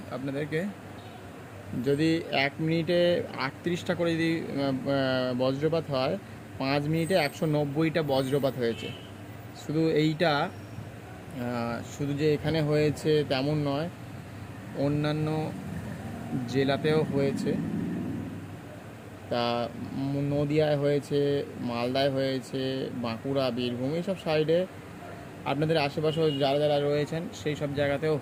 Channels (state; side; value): identical; both; correlation 1.00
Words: আপনাদেরকে। যদি 1 মিনিটে 38টা করে যদি বজ্রপাত হয়, 5 মিনিটে 190টা বজ্রপাত হয়েছে। শুধু এইটা শুধু যে এখানে হয়েছে তেমন নয়, অন্যান্য জেলাতেও হয়েছে। তা নদিয়ায় হয়েছে, মালদায় হয়েছে, বাঁকুড়া, বীরভূম, এইসব সাইডে আপনাদের আশেপাশেও যারা যারা রয়েছেন সেই সব জায়গাতেও